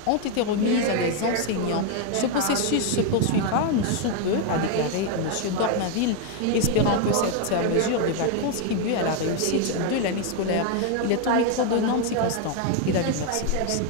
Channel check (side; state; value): both; different; correlation 0.01